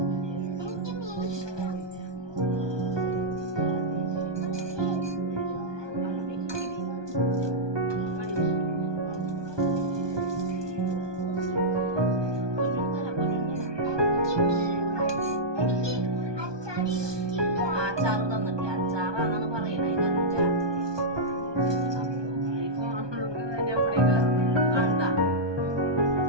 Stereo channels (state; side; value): late; left; 1.2 ms